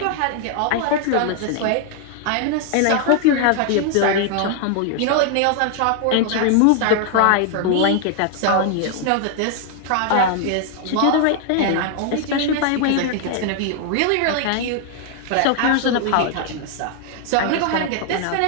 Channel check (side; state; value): both; different; correlation 0.00